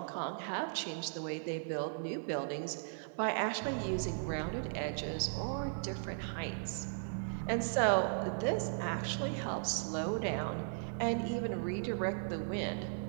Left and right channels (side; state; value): left; silent; digital silence